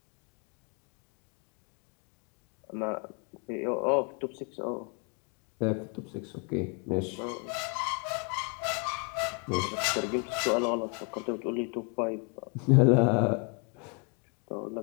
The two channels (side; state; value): right; quieter; 35.3 dB